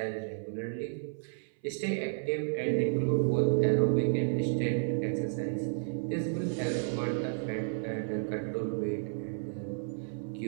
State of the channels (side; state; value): left; silent; 56 dB below the other